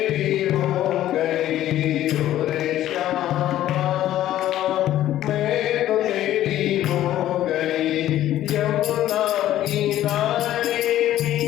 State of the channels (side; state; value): right; quieter; 13.1 dB